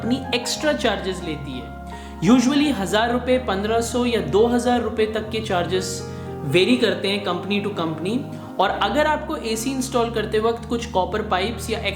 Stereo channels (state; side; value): identical; both; correlation 1.00